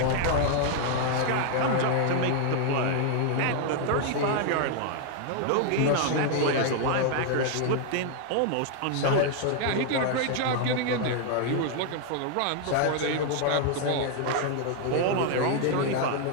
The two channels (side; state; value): both; different; correlation 0.00